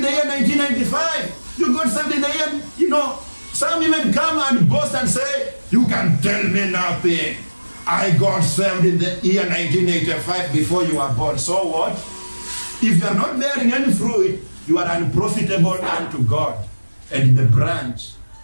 the year 1995. You got saved in the year, some even come and boast and say, you can tell me nothing. I got saved in the year 1985 before you were born. So what? If you are not bearing any fruit, you are unprofitable unto God. And the branch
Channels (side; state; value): both; inverted; correlation -1.00